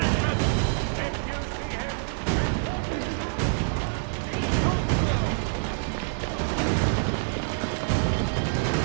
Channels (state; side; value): silent; left; 61 dB below the other